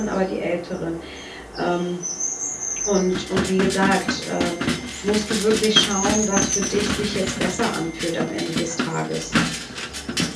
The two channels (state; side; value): identical; both; correlation 1.00